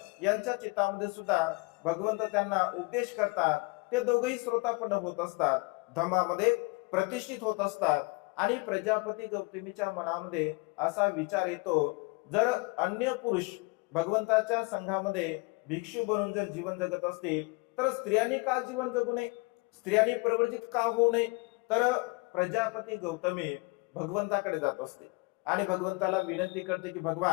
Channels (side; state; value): right; quieter; 27.4 dB